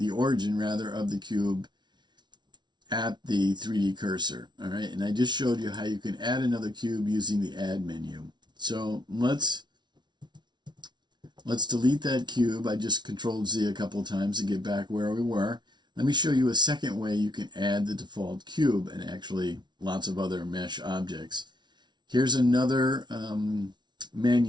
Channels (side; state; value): left; late; 0.21 ms